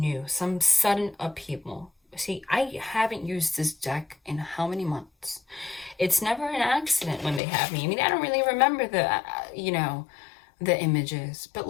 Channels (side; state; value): right; drops out; at 7.4 s